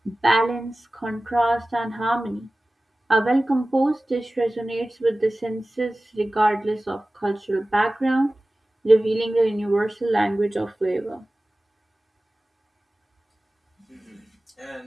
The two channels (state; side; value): normal; both; correlation 0.97